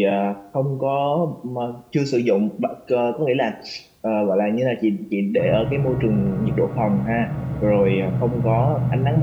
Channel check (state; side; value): identical; both; correlation 1.00